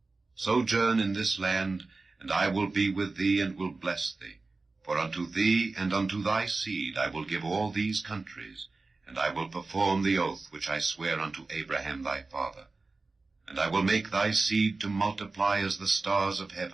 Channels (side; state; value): left; quieter; 3.6 dB